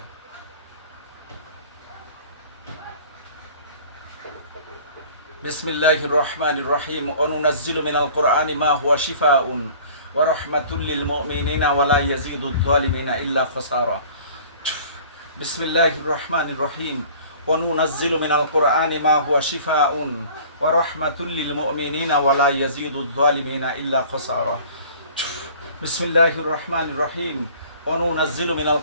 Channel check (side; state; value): both; inverted; correlation -0.48